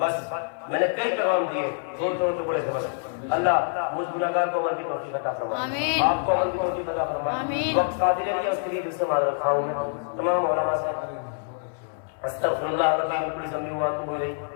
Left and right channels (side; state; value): right; silent; 61 dB below the other